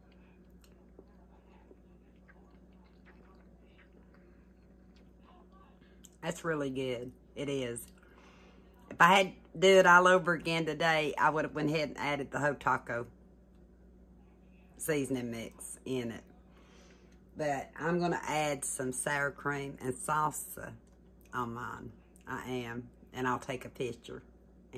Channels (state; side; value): identical; both; correlation 1.00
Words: That's really good. It is. If I had to do it all over again today, I would have went ahead and added the whole taco seasoning mix in it. But I'm going to add some sour cream and salsa on mine. I am. And I'll take a picture